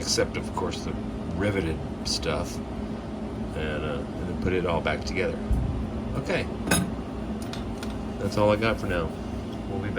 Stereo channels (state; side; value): identical; both; correlation 1.00